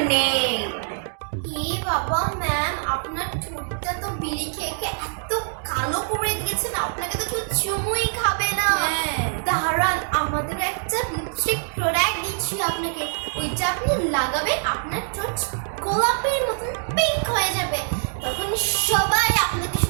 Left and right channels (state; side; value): silent; left; 63 dB below the other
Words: নেই। ই বাবা ম্যাম, আপনার ঠোঁটটা তো বিড়ি খেয়ে খেয়ে এত কালো করে দিয়েছেন, আপনাকে তো কেউ চুমুই খাবে না। হ্যাঁ। দাঁড়ান, আমাদের একটা লিপস্টিক প্রোডাক্ট দিচ্ছি আপনাকে, ওইটা আপনি লাগাবেন, আপনার ঠোঁট গোলাপের মতন পিঙ্ক হয়ে যাবে, তখন সবাই আপনাকে